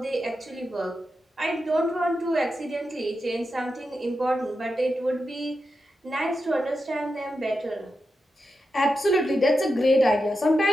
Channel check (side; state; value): both; normal; correlation 0.89